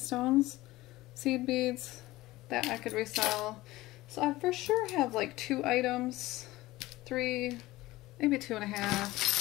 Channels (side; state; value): right; quieter; 18.3 dB